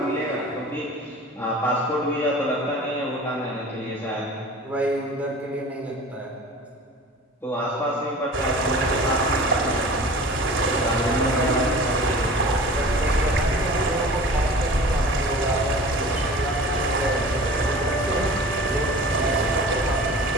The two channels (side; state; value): both; normal; correlation 0.40